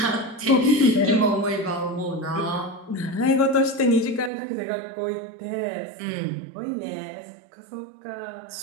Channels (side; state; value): left; drops out; at 4.3 s